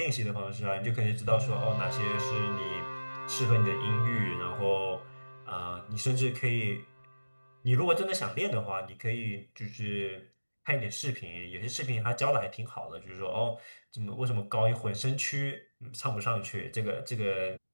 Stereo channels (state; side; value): inverted; both; correlation -1.00